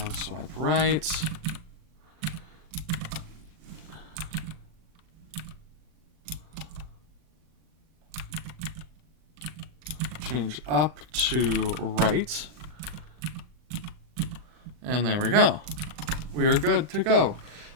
swipe right. Change up to right. And there we go. We are good to go.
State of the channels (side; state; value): left; late; 39 ms